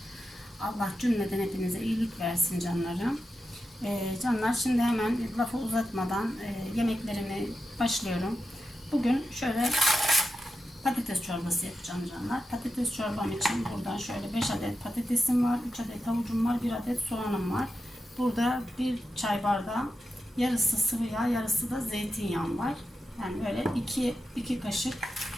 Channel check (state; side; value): normal; both; correlation 0.89